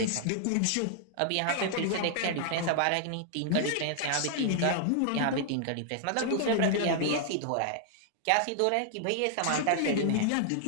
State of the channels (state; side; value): different; both; correlation 0.00